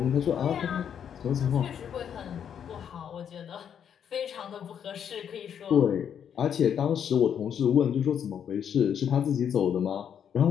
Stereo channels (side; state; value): right; quieter; 8.5 dB